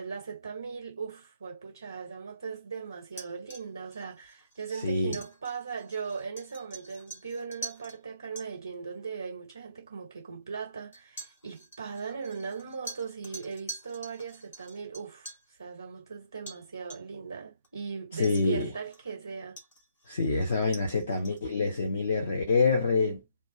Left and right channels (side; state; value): both; inverted; correlation -0.73